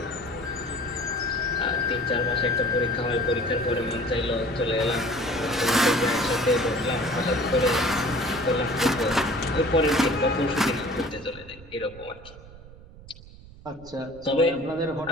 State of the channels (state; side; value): noise; right; rumble, 19 dB below the sound